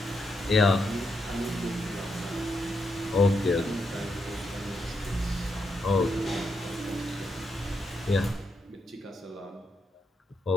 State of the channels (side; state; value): both; normal; correlation 0.81